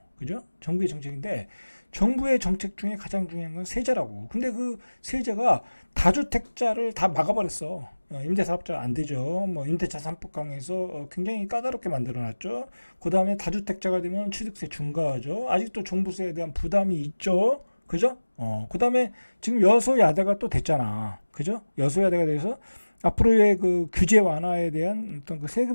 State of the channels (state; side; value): inverted; both; correlation -1.00